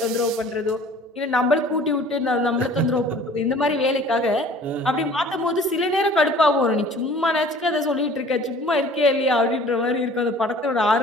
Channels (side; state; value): both; normal; correlation 0.49